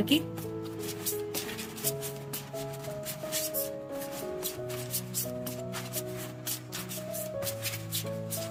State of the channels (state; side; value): identical; both; correlation 1.00